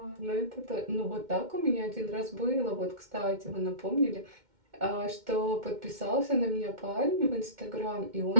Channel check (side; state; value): left; late; 2.1 ms